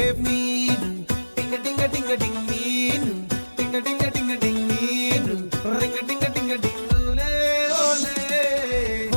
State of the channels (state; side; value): inverted; both; correlation -1.00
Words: మీను టింగ టింగ టింగ టింగ్ మీను, టింగ టింగ టింగ టింగ్ మీను, రింగ టింగ టింగ టింగ్ ఓలే ఓలే.